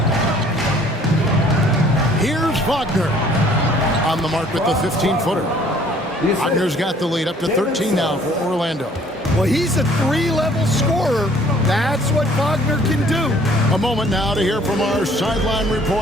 Here's Wagner on the mark with the 15-footer. Wagner's got the lead up to 13 now for Orlando. Well, he's a 3-level scorer. That's what Wagner can do. A moment now to hear from our sideline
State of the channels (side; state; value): both; normal; correlation 0.57